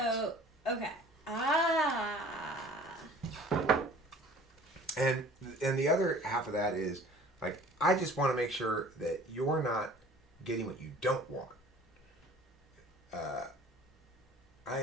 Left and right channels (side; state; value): both; normal; correlation 0.48